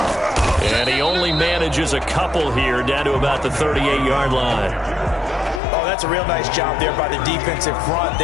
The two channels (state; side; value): drops out; right; at 5.6 s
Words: And he only manages a couple here down to about the 38-yard line. Oh, that's a real nice job there by the defensive front.